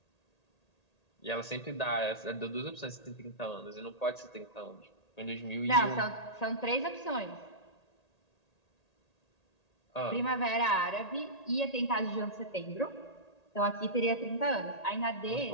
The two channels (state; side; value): late; right; 1.8 ms